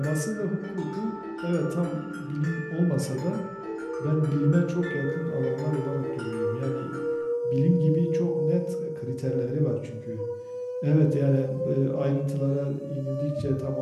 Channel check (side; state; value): both; identical; correlation 1.00